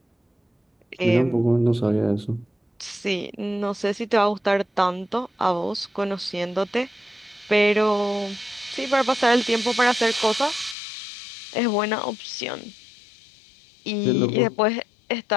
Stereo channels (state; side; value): drops out; right; at 10.8 s